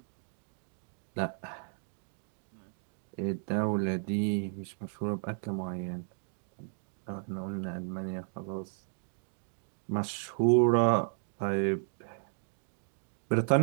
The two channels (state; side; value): silent; left; 55 dB below the other